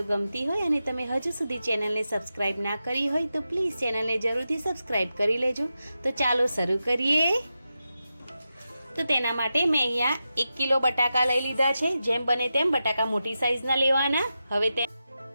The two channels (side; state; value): both; inverted; correlation -0.90